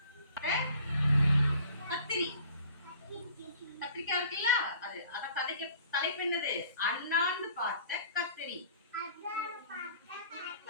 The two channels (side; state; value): both; inverted; correlation -0.51